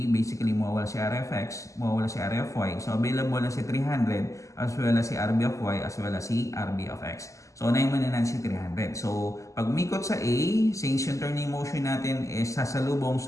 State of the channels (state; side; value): late; right; 0.16 ms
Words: basically mawawala si area of x, mawawala si area of y. So, available na si 300, as well as si RB of y, as well as si RB of x. So, unahin muna natin si 300. So, pag umikot sa A, since yung turning motion natin is sasalubong